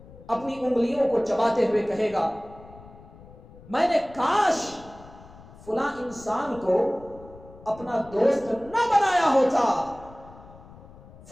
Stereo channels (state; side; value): noise; left; rumble, 20 dB below the sound